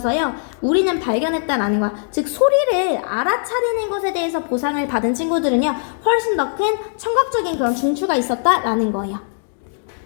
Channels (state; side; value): silent; right; digital silence